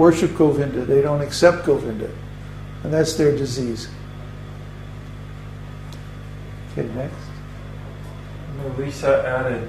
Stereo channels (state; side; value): identical; both; correlation 1.00